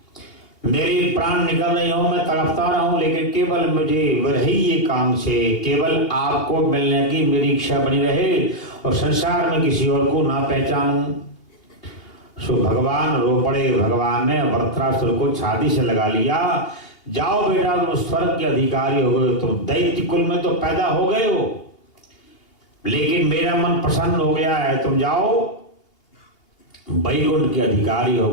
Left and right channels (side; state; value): right; late; 2.8 ms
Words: मेरे प्राण निकल रहे हो, मैं तड़पता रहा हूं, लेकिन केवल मुझे वही एकांक्षे, केवल आपको मिलने की मेरी इच्छा बनी रहे और संसार में किसी और को ना पहचानूं। सो भगवान रो पड़े। भगवान ने वृत्रासुर को छाती से लगा लिया। जाओ बेटा, तुम स्वर्ग के अधिकारी हो गए, तुम दैत्य कुल में तो पैदा हो गए हो, लेकिन मेरा मन प्रसन्न हो गया है, तुम जाओ वैकुंठ के अधिकारी हो